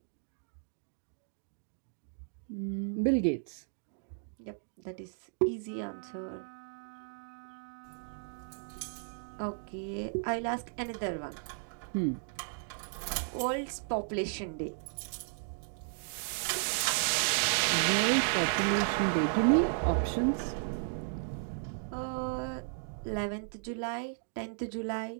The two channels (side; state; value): left; silent; digital silence